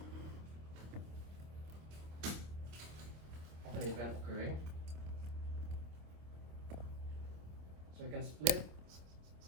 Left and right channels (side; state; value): left; late; 25 ms